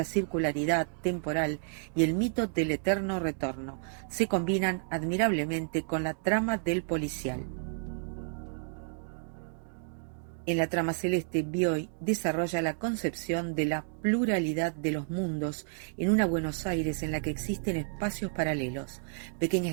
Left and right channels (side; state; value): left; silent; 57 dB below the other